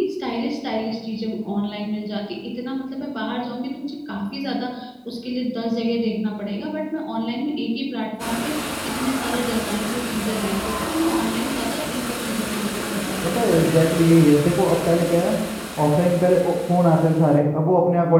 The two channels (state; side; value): identical; both; correlation 1.00